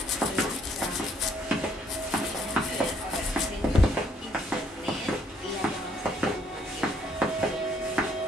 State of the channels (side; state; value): both; normal; correlation 0.67